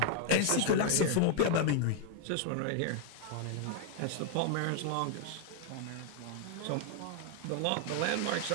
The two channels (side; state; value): both; different; correlation 0.00